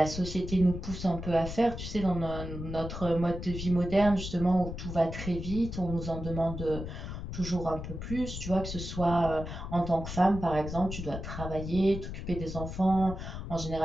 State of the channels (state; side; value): noise; left; rumble, 7 dB below the sound